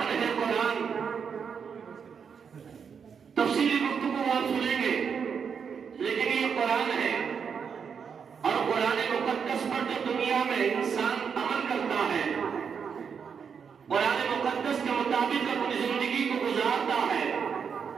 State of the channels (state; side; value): quieter; left; 6.6 dB